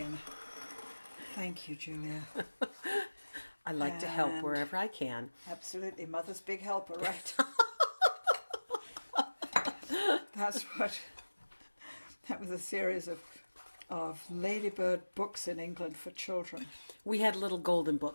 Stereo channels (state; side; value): inverted; both; correlation -1.00